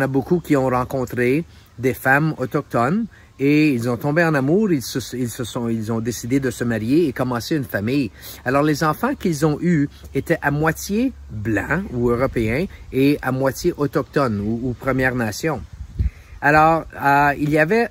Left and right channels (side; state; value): both; identical; correlation 1.00